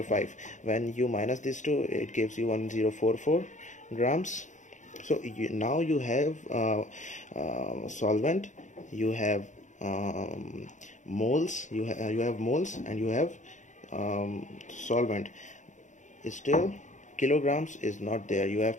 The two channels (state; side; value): late; right; 0.36 ms